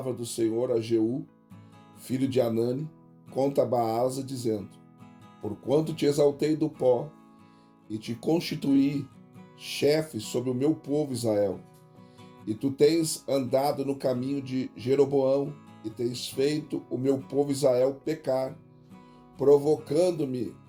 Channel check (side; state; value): both; identical; correlation 1.00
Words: do Senhor a Jeú, filho de Anani, contra Baasa, dizendo: Porquanto te exaltei do pó, e te constituí chefe sobre o meu povo Israel, e tu tens andado no caminho de Jeroboão, e tens feito o meu povo Israel pecar, provocando-me